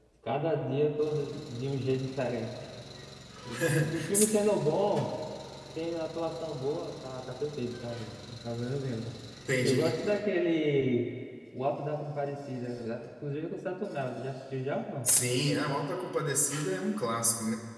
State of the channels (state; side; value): identical; both; correlation 1.00